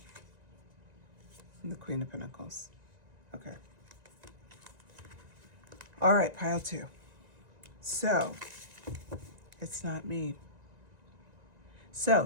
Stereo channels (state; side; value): late; left; 1.9 ms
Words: And the Queen of Pentacles. Okay. All right, pile 2. So, it's not me.